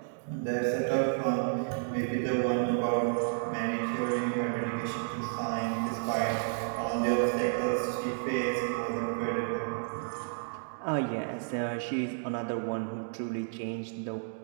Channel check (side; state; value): left; silent; digital silence